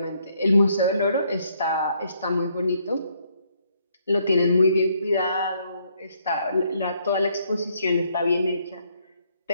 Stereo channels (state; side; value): inverted; both; correlation -0.71